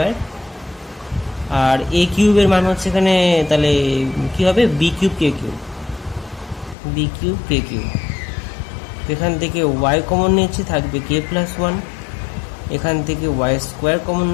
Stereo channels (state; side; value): drops out; right; at 6.8 s